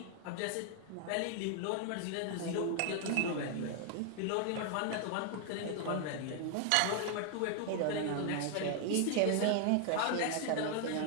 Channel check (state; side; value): different; both; correlation 0.00